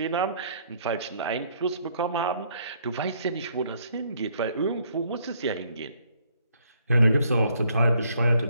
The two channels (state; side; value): inverted; both; correlation -0.67